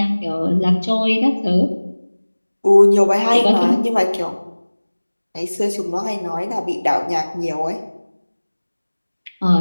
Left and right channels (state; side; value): inverted; both; correlation -1.00